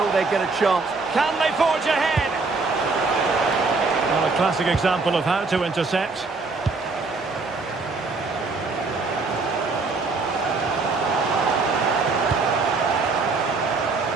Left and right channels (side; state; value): left; quieter; 3.9 dB